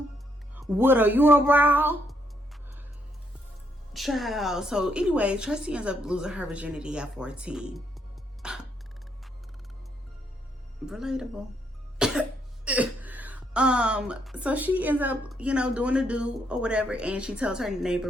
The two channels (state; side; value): normal; both; correlation 0.74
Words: with a unibrow? Child. So anyway, Tracy ends up losing her virginity at 14. Relatable. So she ends up, you know, doing the do or whatever, and she tells her neighbor